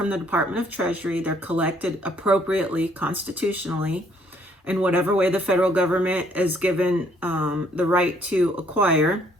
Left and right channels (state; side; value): normal; both; correlation 0.65